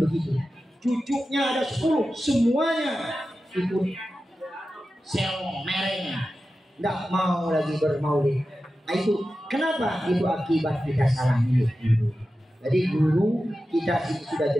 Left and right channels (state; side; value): normal; both; correlation 0.93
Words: begitu. Cucunya ada 10, semuanya ikut selong mereng, tidak mau lagi bermaulid. Nah itu kenapa? Itu akibat kita salah milih guru. Jadi guru kita sudah